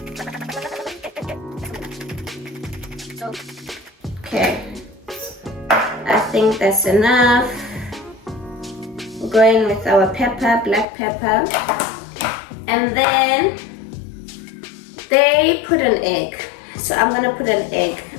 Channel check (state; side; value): drops out; right; at 10.9 s